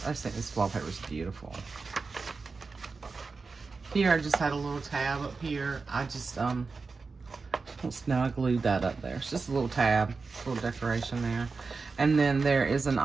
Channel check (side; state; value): left; quieter; 4.3 dB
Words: think this wallpaper is beautiful. Here I just had a little tab up here. I just now I glued that up there. It's just a little tab, a little decoration there. And then there is an